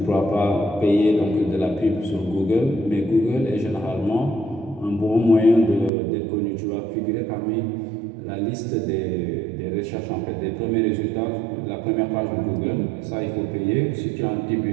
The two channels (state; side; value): drops out; left; at 5.9 s